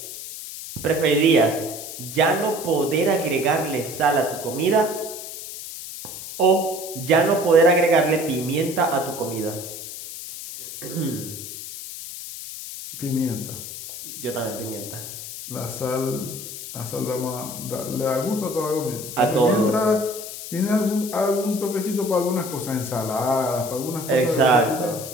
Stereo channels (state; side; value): noise; left; hiss, 10 dB below the sound